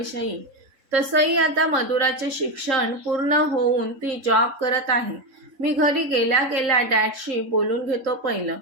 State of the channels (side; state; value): left; late; 3.8 ms